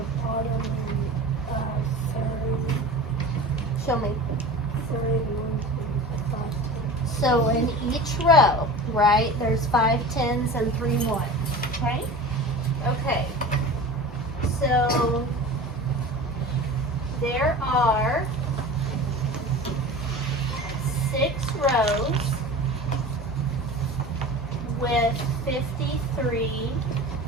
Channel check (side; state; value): both; normal; correlation 0.35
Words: bottom and 30. Show me. 31. So in each row, right, there's 5 10s and 3 1s, okay? Okay, so there are 6 rows with 53